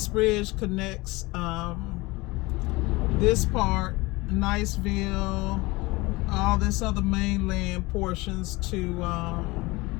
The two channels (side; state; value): right; quieter; 22.5 dB